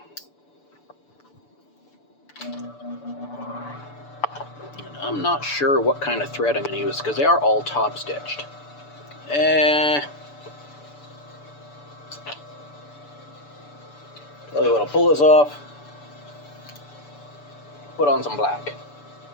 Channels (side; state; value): right; late; 6.9 ms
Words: And I'm not sure what kind of thread I'm going to use because they are all top stitched. Tell you what, I'll pull this off, put on some black.